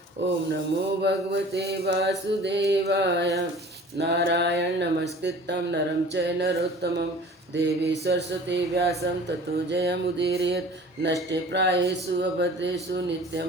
ओम नमो भगवते वासुदेवाय। नारायण नमस्कृतं नरं चैव नरोत्तमं देवी सरस्वती व्यासं ततो जयमुदीरयेत्। नष्टे प्रायेषु अभद्रेषु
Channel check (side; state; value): both; normal; correlation 0.45